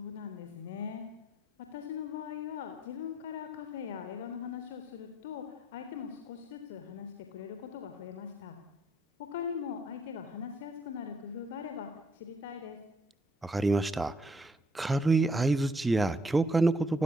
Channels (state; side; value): normal; both; correlation 0.71